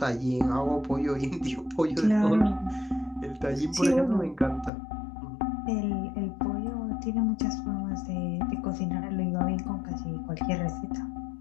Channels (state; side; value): drops out; right; at 4.7 s